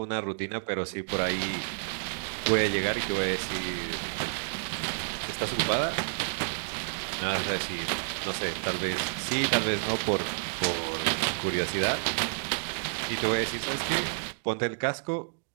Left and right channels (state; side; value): silent; left; digital silence